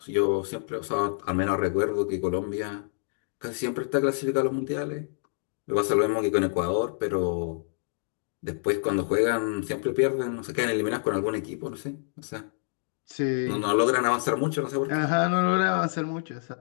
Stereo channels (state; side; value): silent; right; digital silence